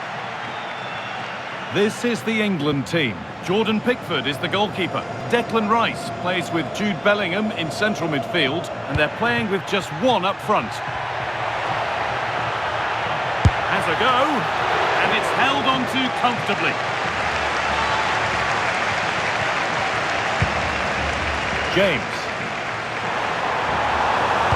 This is the England team. Jordan Pickford is the goalkeeper. Declan Rice plays with Jude Bellingham in central midfield, and they're playing with just one up front. Has a go, and it's held on to comfortably. James.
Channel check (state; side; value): identical; both; correlation 1.00